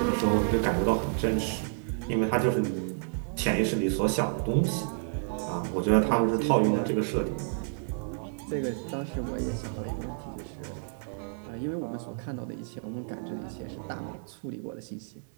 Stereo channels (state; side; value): silent; left; 58 dB below the other